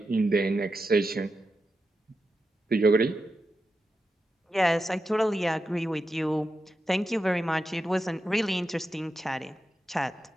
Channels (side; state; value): both; normal; correlation 0.89